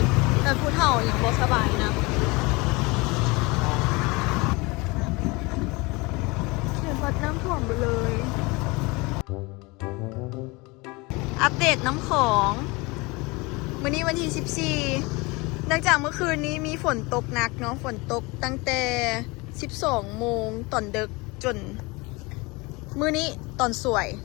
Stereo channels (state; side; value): quieter; right; 25.2 dB